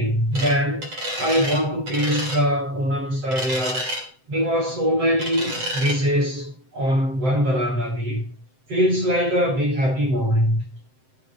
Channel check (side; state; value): left; late; 7.7 ms